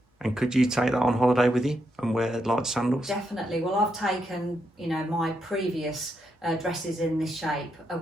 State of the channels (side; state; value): both; normal; correlation 0.81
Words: And could you take that on holiday with you and wear light sandals? Definitely. Well, I've taken, you know, my previous dresses in this shape